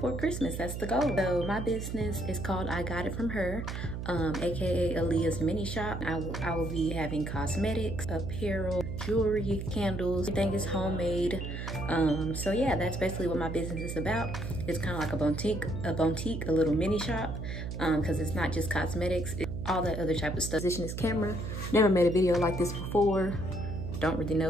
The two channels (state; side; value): noise; right; hum, 5 dB below the sound